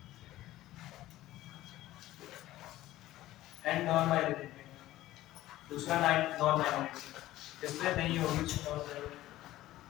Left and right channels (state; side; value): quieter; right; 15.5 dB